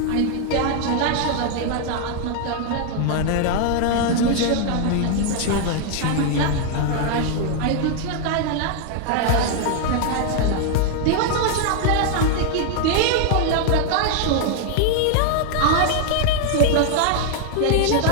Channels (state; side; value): different; both; correlation 0.00